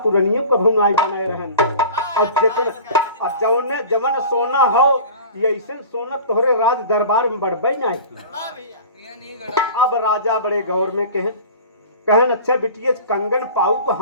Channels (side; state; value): both; inverted; correlation -0.40